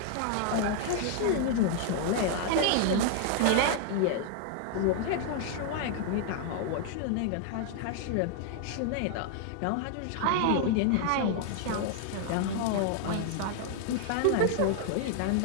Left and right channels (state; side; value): different; both; correlation 0.00